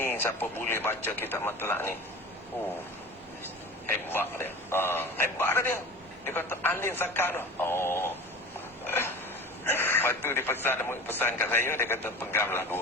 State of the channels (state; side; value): normal; both; correlation 0.35